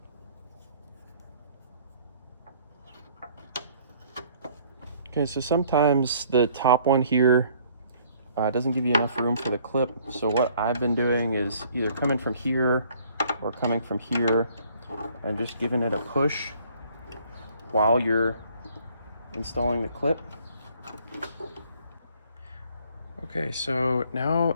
Okay, so sometimes the top one here doesn't give you enough room for the clip. So what I've been doing is either coming from here or coming from here and just giving it a push while you're installing the clip. Okay, so now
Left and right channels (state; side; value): inverted; both; correlation -0.60